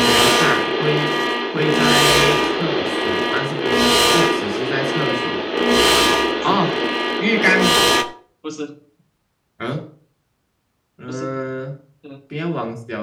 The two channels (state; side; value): identical; both; correlation 1.00